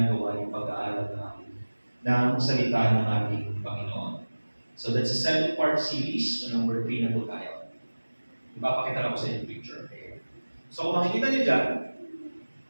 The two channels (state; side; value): inverted; both; correlation -1.00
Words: yung pag-aaral ng salita ng ating Panginoon? So that's a 7-part series. So number 3 na po tayo. Ipapakita lang ko sa inyo yung picture. Okay. So kung makikita niyo dyan,